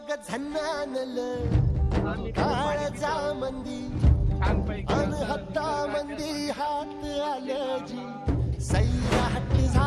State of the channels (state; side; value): identical; both; correlation 1.00